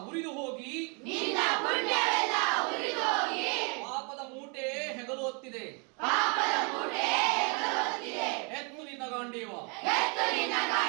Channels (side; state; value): left; quieter; 35.1 dB